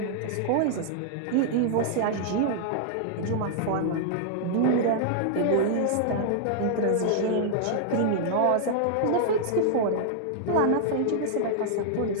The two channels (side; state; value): both; different; correlation -0.01